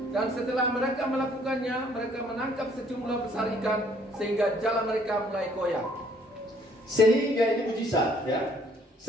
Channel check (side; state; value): both; normal; correlation 0.62